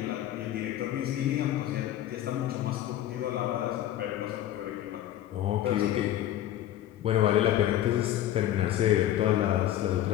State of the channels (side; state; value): right; quieter; 12.5 dB